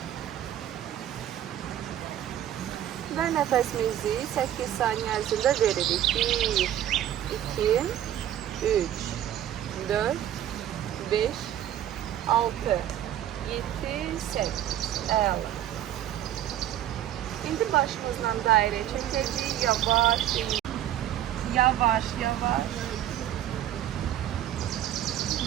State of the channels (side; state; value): left; quieter; 11.7 dB